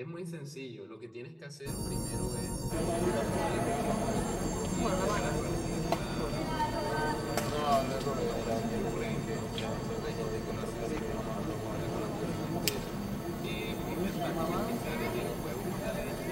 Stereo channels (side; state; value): both; identical; correlation 1.00